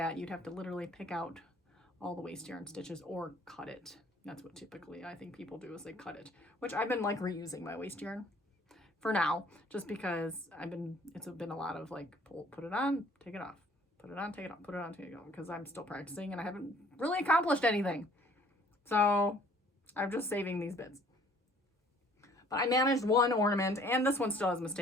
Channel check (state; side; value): normal; both; correlation 0.57